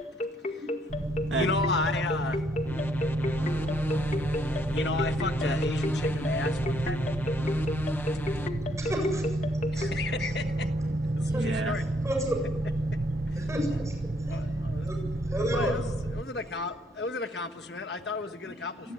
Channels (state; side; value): normal; both; correlation 0.69